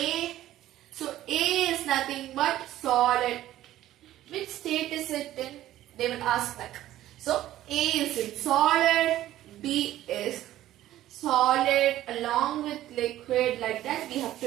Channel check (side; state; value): left; quieter; 13.9 dB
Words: So A is nothing but solid. Which state is it in? They will ask like. So A is in solid, B is solid along with liquid, like that we have